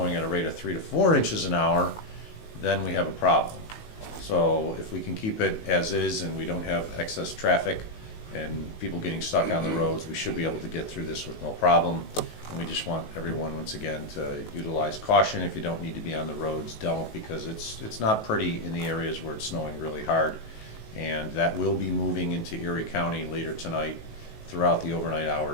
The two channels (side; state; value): right; late; 19 ms